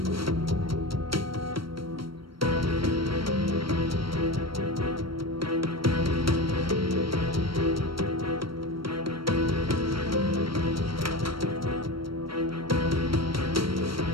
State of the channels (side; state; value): left; late; 0.74 ms